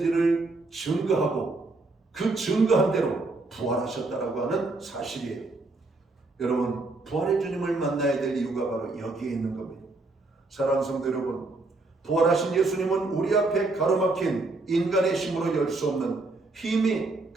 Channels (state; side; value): quieter; left; 3.3 dB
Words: 증거하고 그 증거한 대로 부활하셨다라고 하는 사실이에요. 여러분 부활의 주님을 만나야 될 이유가 바로 여기에 있는 겁니다. 사랑하는 성도 여러분, 부활하신 예수님은 우리 앞에 가로막힌 인간의 힘으로 열 수 없는 힘이